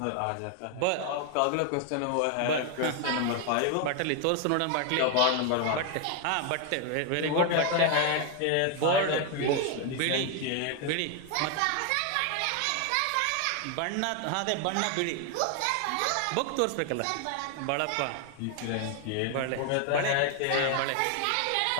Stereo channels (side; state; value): both; different; correlation 0.01